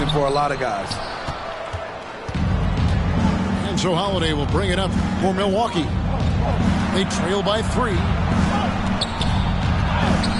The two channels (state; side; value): identical; both; correlation 1.00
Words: for a lot of guys. And so Holiday will bring it up for Milwaukee. They trail by 3.